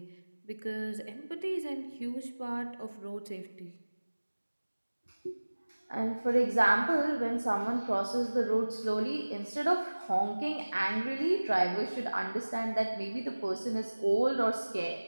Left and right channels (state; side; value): inverted; both; correlation -1.00